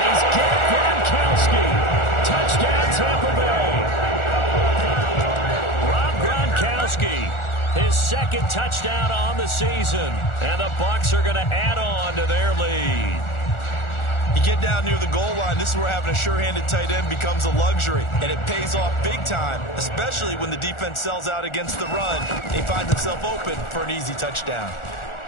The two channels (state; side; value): late; right; 1.4 ms